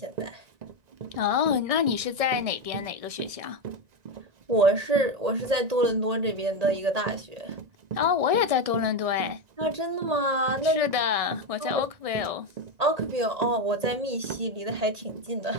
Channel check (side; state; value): left; late; 1.6 ms